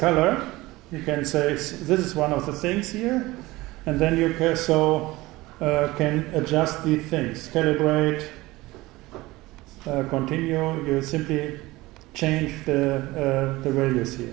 You can say this is one of the things here, and then you can, can adjust these things, calibrate, continue. You simply change the values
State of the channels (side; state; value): left; quieter; 19.7 dB